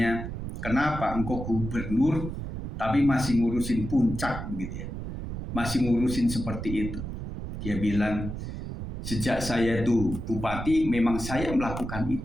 kenapa engkau gubernur tapi masih ngurusin puncak begitu ya, masih ngurusin seperti itu. Dia bilang, sejak saya itu bupati memang saya melakukan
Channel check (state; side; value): noise; right; rumble, 6 dB below the sound